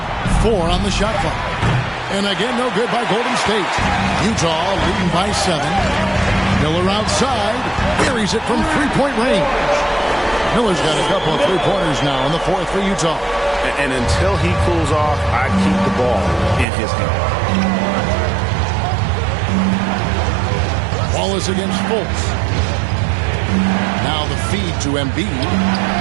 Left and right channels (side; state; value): left; drops out; at 16.7 s